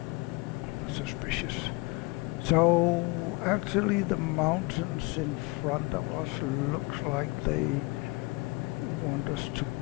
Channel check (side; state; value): right; quieter; 25.5 dB